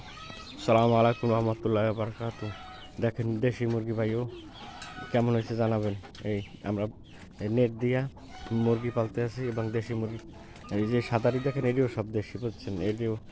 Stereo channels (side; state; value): both; identical; correlation 1.00